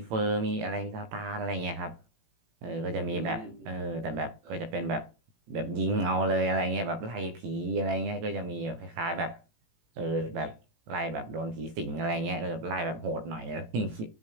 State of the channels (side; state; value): left; late; 18 ms